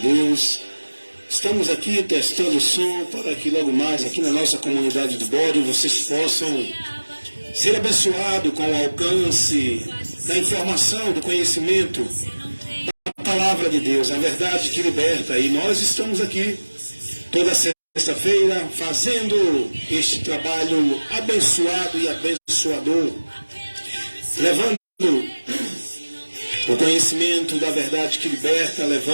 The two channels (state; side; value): inverted; both; correlation -1.00